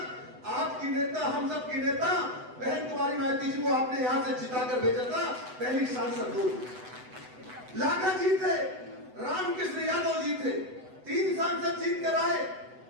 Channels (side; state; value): left; late; 8.0 ms